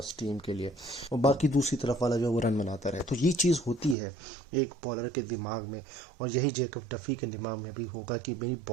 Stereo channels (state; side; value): drops out; left; at 4.0 s